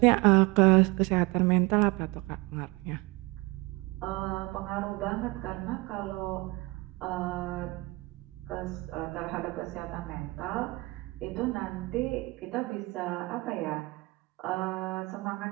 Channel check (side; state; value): left; quieter; 23.5 dB